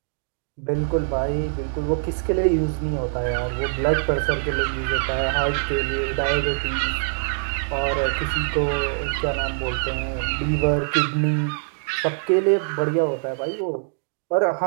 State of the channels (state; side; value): silent; left; digital silence